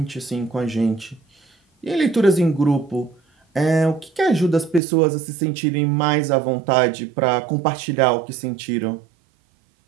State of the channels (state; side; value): drops out; left; at 4.8 s